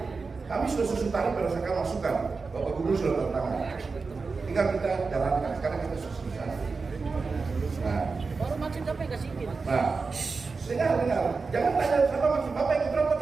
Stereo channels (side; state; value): left; quieter; 4.4 dB